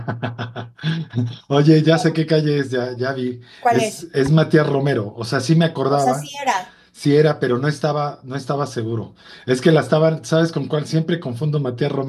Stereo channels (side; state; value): both; identical; correlation 1.00